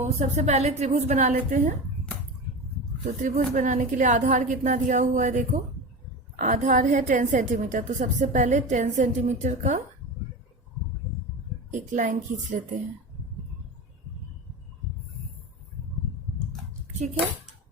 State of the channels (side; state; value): both; normal; correlation 0.26